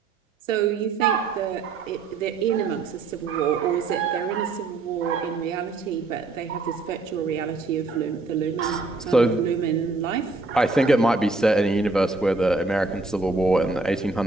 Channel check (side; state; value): left; quieter; 3.7 dB